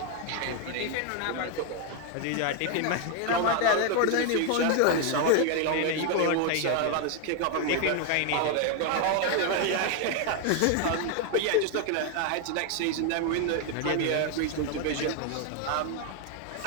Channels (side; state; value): both; different; correlation 0.01